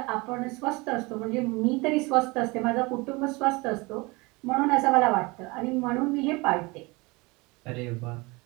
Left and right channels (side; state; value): left; quieter; 25.2 dB